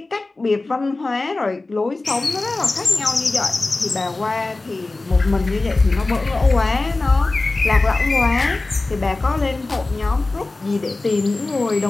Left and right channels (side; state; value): right; quieter; 3.2 dB